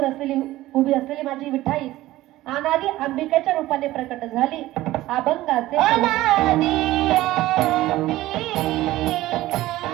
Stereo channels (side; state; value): left; quieter; 16.4 dB